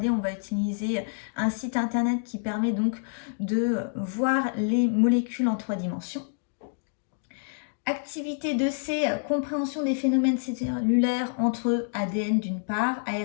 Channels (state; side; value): silent; right; digital silence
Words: On va utiliser un site internet qui permet donc de voir les molécules en 3 dimensions. Activité 2C, compréhension des phénomènes cellulaires entre ADN d'une part,